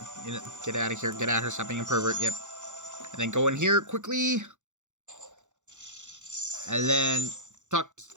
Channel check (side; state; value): left; late; 0.85 ms